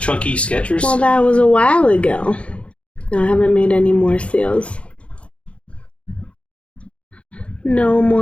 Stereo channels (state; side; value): late; right; 0.061 ms